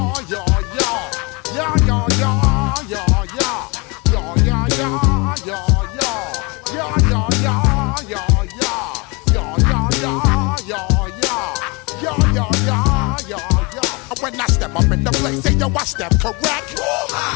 When I step up in the place, say yo, I step correct.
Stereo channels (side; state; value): right; quieter; 28.5 dB